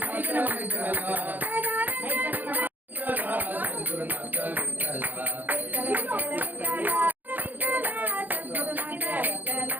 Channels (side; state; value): left; late; 0.084 ms